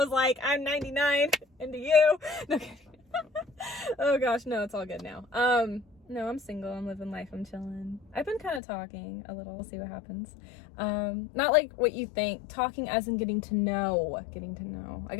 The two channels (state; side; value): drops out; right; at 8.6 s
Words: like, I'm 99 into you. No kidding. Oh gosh, no, it's all good now. No, I'm single, I'm living life, I'm chilling. I've been kind of talking a little, we'll see what happens. Not like what you think, talking as in getting to know. Like